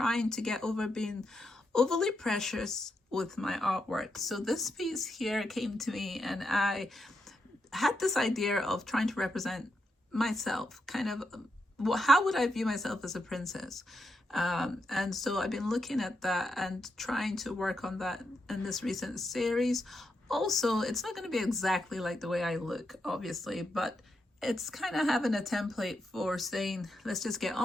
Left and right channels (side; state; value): both; normal; correlation 0.83